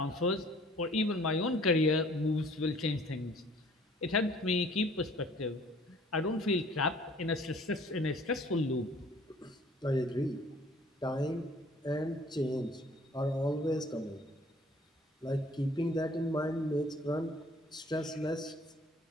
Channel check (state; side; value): normal; both; correlation 0.55